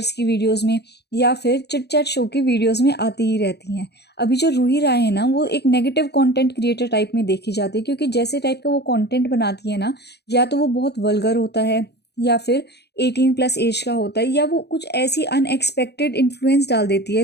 की वीडियोज़ में या फिर चिट चैट शो की वीडियोस में आती ही रहती हैं। अभी जो रूही राय है ना, वो एक नेगेटिव कंटेंट क्रिएटर टाइप में देखी जाती है, क्योंकि जैसे टाइप का वो कंटेंट बनाती है ना, या तो वो बहुत वल्गर होता है, या फिर 18+ एज का होता है, या वो कुछ ऐसी अनएक्सपेक्टेड इन्फ्लुएंस डाल देती है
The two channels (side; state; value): right; late; 0.48 ms